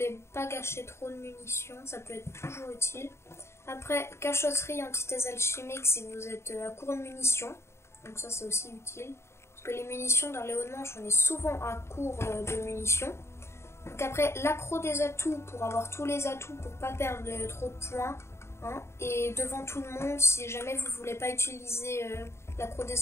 pas gâcher trop de munitions, ça peut être toujours utile. Après, cachotterie, antithèse alchimique si vous êtes à court de munitions, donc ça c'est aussi utile, parce que les munitions dans les hauts de manche on est souvent à court de munitions. Donc après, l'accro des atouts pour avoir tous les atouts pour pas perdre trop de points, et devant tout le monde si jamais vous voulez pas utiliser l'accro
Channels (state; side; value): late; right; 0.13 ms